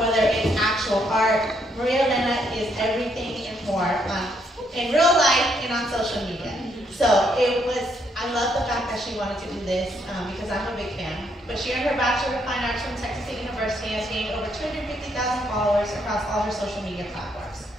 it's actual art. Maria Elena is everything and more in real life and on social media. So I love the fact that she wanted to do this because I'm a big fan. But she earned her Bachelor of Fine Arts from Texas State University and has gained over 250,000 followers across all her social media platforms.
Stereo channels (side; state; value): both; normal; correlation 0.73